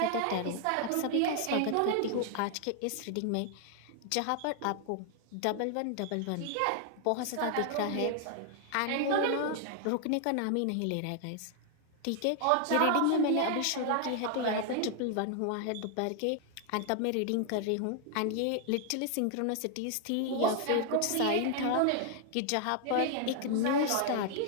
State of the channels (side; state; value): both; different; correlation 0.00